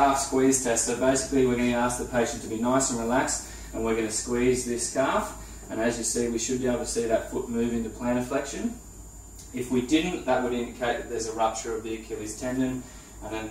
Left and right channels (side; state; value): both; identical; correlation 1.00